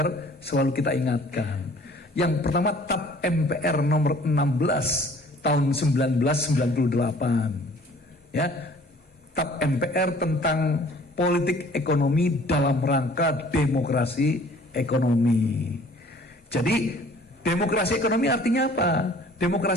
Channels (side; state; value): both; normal; correlation 0.53